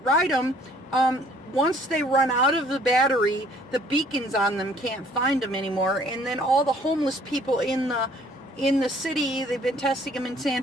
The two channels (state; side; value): normal; both; correlation 0.58